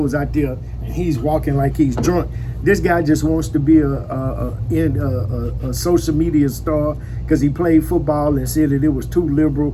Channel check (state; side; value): identical; both; correlation 1.00